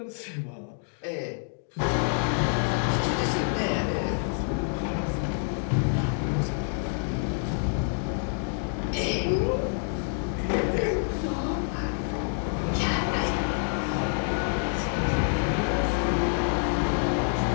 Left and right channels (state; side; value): silent; right; 60 dB below the other